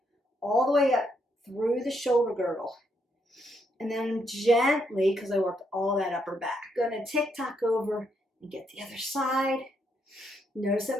all the way up through the shoulder girdle. And then gently, because I worked all that upper back, gonna tick-tock over and get the other side. Notice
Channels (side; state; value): both; normal; correlation 0.76